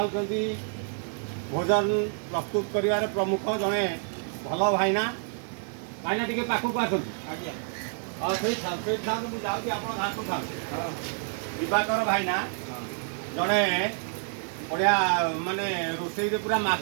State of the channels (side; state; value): left; silent; 58 dB below the other